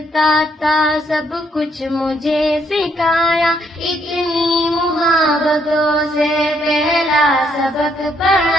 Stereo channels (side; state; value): both; normal; correlation 0.72